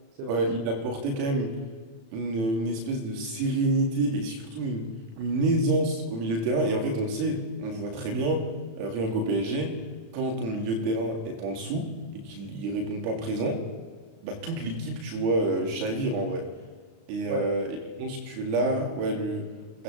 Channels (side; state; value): left; late; 36 ms